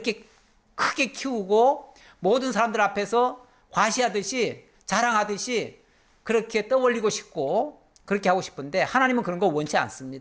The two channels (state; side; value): identical; both; correlation 1.00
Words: 크게 키우고 모든 사람들 앞에서 과시하듯이 자랑하듯이 그렇게 떠올리고 싶고 그렇게 하고 싶은데 하나님은 그런 거 원치